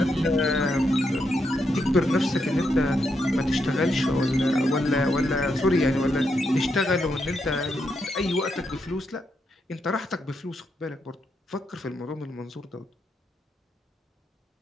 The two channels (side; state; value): both; normal; correlation 0.81